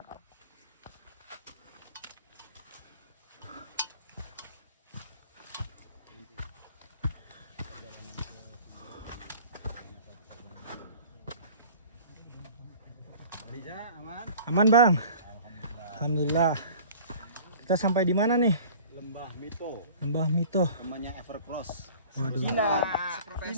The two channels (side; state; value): both; inverted; correlation -0.45